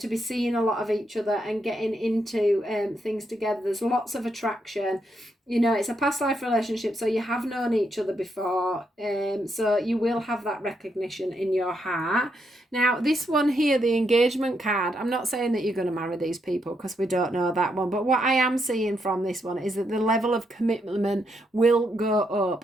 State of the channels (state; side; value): normal; both; correlation 0.79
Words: be seeing a lot of each other and getting into things together. There's lots of attraction. You know, it's a past life relationship, so you have known each other before. So you will have that recognition in your heart. Now, this one here, the engagement card, I'm not saying that you're going to marry these people, because we don't know that one. But what I am seeing from this one is that the level of commitment will go